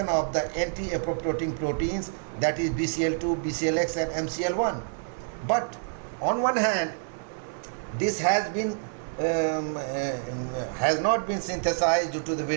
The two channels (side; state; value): left; silent; digital silence